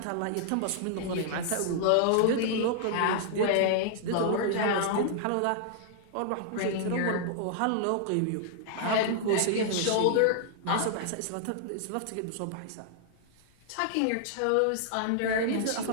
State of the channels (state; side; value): different; both; correlation -0.01